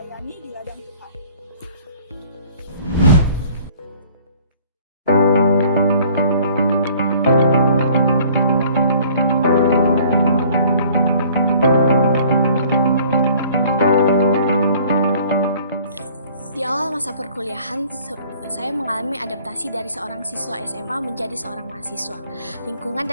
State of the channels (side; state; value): both; inverted; correlation -0.54